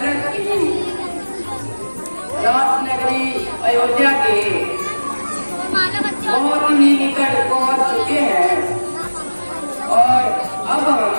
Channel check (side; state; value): both; inverted; correlation -1.00